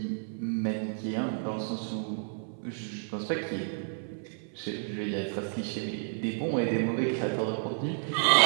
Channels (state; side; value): silent; left; 57 dB below the other